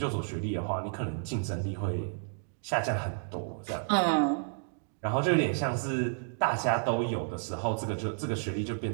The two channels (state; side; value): silent; left; digital silence